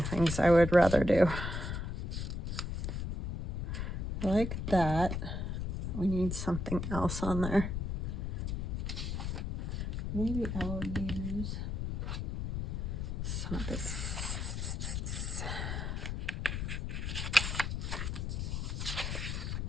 I would rather do. Like that. We need something else on there. Maybe I will use some of this.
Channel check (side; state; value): left; noise; rumble, 2 dB below the sound